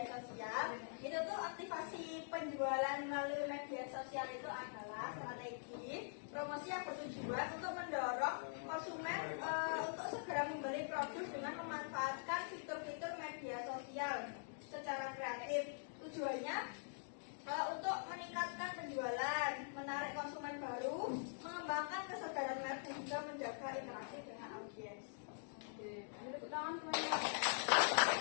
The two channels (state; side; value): silent; right; digital silence